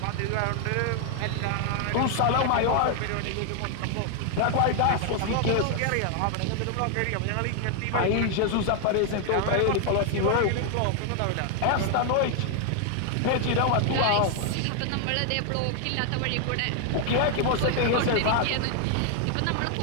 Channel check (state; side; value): different; both; correlation 0.00